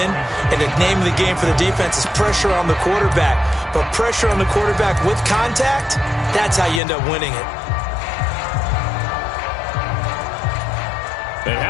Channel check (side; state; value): right; drops out; at 6.8 s